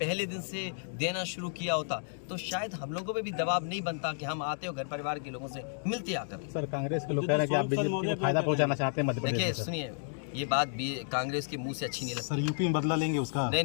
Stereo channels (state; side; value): silent; right; digital silence